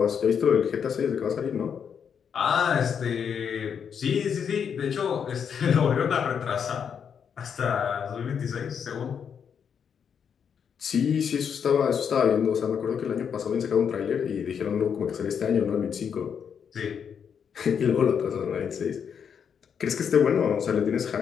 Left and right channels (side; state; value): right; quieter; 7.4 dB